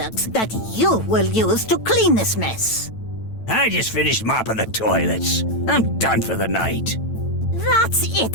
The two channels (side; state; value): right; late; 9.1 ms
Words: that you will use to clean this mess. I just finished mopping the toilets. I'm done for the night. That's